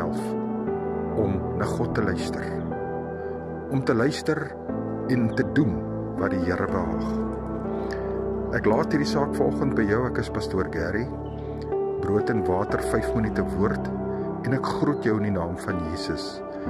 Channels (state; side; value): identical; both; correlation 1.00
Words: om na God te luister. Om te luister en te doen wat die Here behaag. Ek laat hierdie saak vanoggend by jou. Ek is Pastoor Gary. Brood en water, 5 minute woord. En ek groet jou in die naam van Jesus.